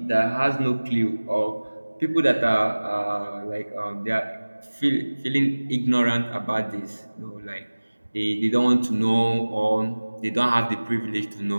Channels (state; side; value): inverted; both; correlation -1.00